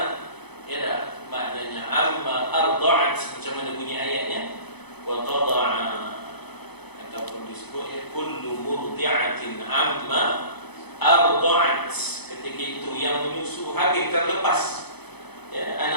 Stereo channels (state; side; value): late; right; 0.98 ms